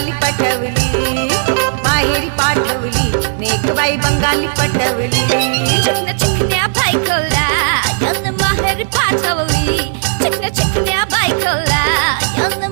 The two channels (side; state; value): left; silent; digital silence